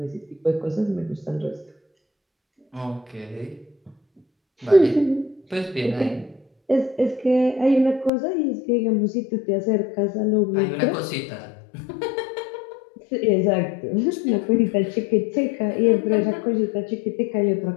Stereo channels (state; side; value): drops out; right; at 8.1 s